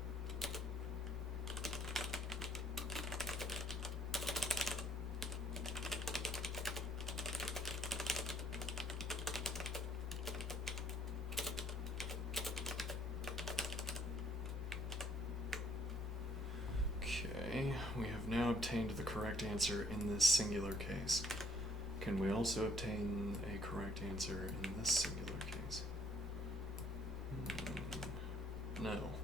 Okay, we have now obtained the correct answer in this singular case. Can we also obtain a correct answer in this singular case?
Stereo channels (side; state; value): both; normal; correlation 0.64